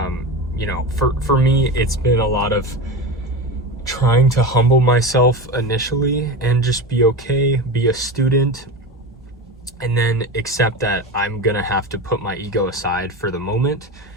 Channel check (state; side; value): normal; both; correlation 0.24